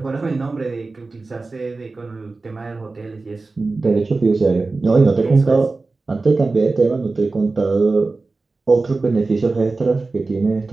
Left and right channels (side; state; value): left; quieter; 3.7 dB